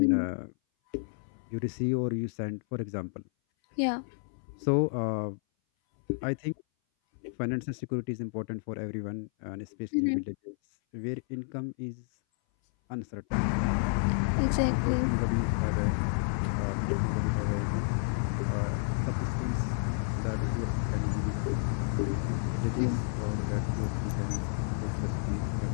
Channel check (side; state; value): right; silent; 57 dB below the other